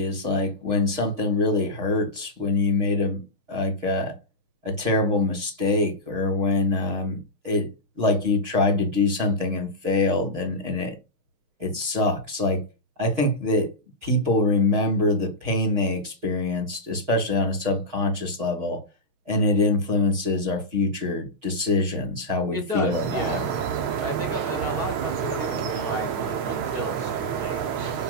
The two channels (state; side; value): late; left; 6.4 ms